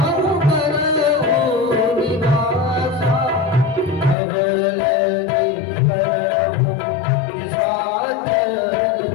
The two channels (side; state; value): right; drops out; at 4.2 s